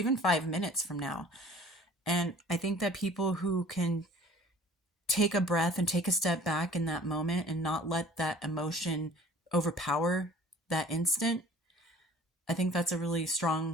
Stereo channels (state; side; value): normal; both; correlation 0.49